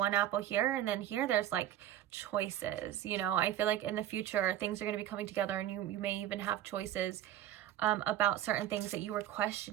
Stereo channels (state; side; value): quieter; left; 12.0 dB